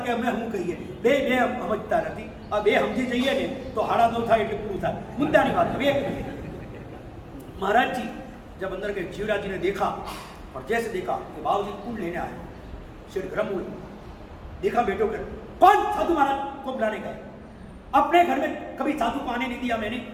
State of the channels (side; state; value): both; identical; correlation 1.00